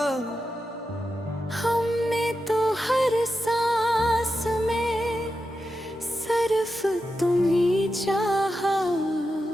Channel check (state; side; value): normal; both; correlation 0.89